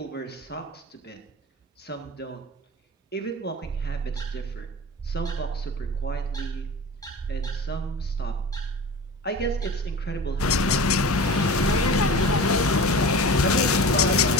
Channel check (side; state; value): both; normal; correlation 0.34